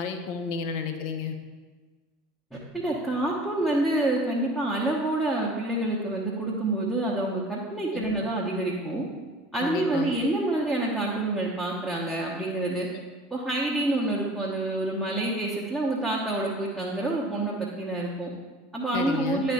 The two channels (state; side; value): normal; both; correlation 0.45